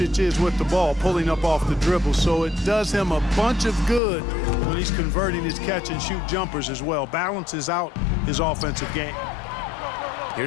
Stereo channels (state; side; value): drops out; right; at 4.0 s